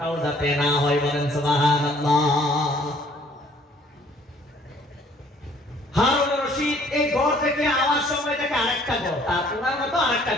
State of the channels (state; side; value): normal; both; correlation 0.59